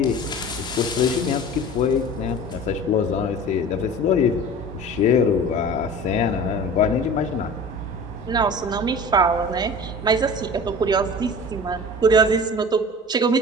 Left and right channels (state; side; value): normal; both; correlation 0.38